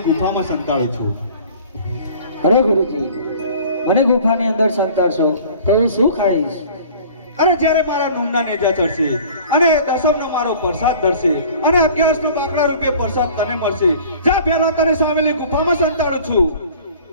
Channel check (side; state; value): both; inverted; correlation -0.47